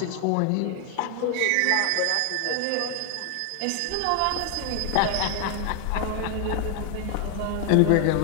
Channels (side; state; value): both; different; correlation 0.00